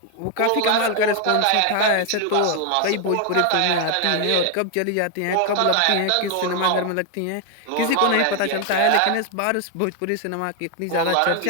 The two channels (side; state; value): both; different; correlation 0.00